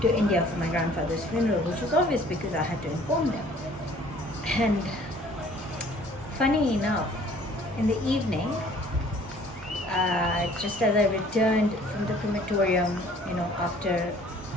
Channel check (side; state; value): both; normal; correlation 0.54